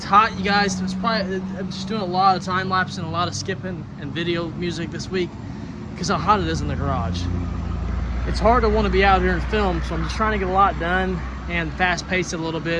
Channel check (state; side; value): identical; both; correlation 1.00